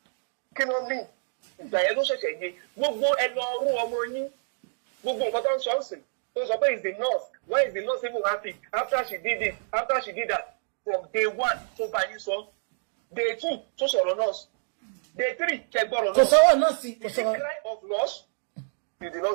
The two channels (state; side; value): silent; left; digital silence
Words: kinon me. If the yellow say gbogbo elo ru omo yin gbogbo nkan ton so nsin to so pe is the nurse. Why is the nurse even happy after she did this, after she did that? From day 1 to ba yin so, day 2 to sọ̀rọ̀ nurse, day 3 ke gboro nurse. So nurse, the cry of loss, you did